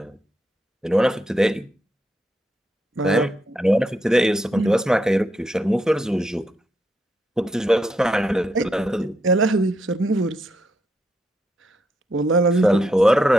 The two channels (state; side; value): normal; both; correlation 0.80